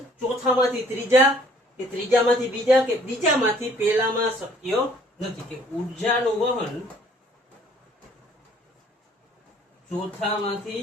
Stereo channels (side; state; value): both; normal; correlation 0.59